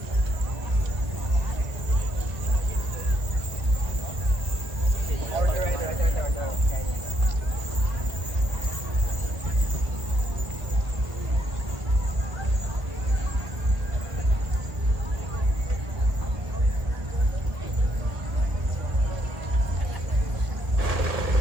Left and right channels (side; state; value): left; late; 1.4 ms